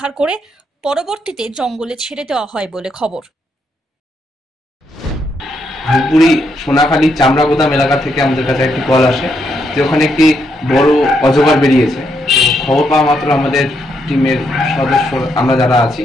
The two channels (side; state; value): both; normal; correlation 0.77